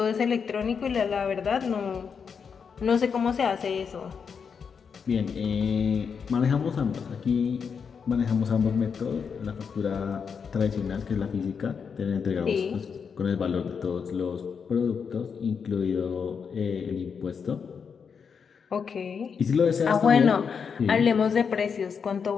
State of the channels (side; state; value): right; quieter; 6.3 dB